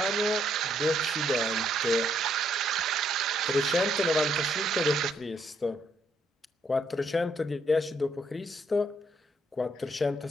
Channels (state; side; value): normal; both; correlation 0.72